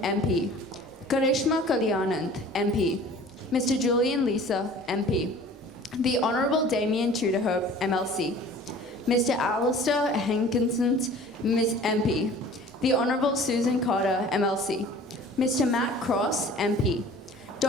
MP. Karishma Kalyanand, MP. Mr. Julian Lisa, MP. The Honourable Damien Tudorhope, MLC. Mr. Alistair Hankinson, Miss MP. The Honourable Susan Carter, MLC. Mr. Matt Cross, MP.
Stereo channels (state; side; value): normal; both; correlation 0.46